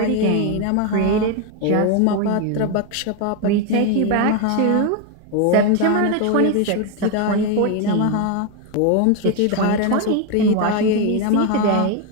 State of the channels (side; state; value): both; different; correlation 0.02